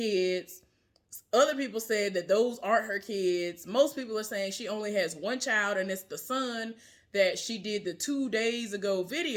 Other people said that those aren't her kids. Most people are saying she only has 1 child, and it's the son that she did the 2 days ago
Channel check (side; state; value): both; identical; correlation 1.00